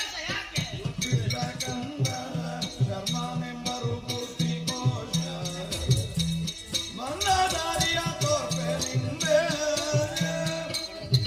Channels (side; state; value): both; identical; correlation 1.00